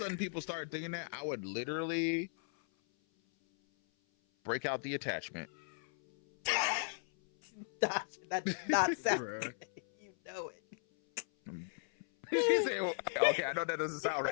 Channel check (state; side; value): silent; right; 53 dB below the other